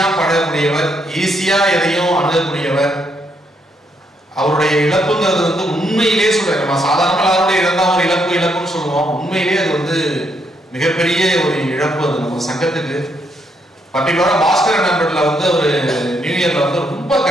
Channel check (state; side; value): normal; both; correlation 0.75